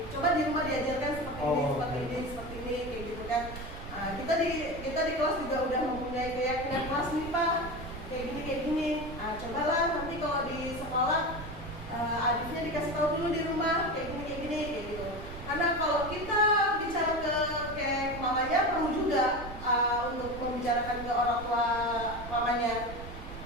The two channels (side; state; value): right; noise; rumble, 11 dB below the sound